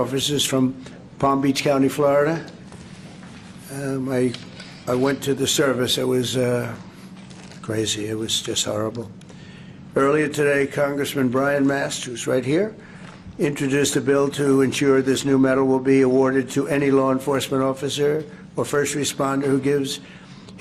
from Palm Beach County, Florida. I went to the service. It was crazy. It was just horrible. Earlier today, Congressman Brian Mast, who's right here, introduced a bill to ensure this new medal will be awarded to any law enforcement officer or first responder who gives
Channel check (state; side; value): identical; both; correlation 1.00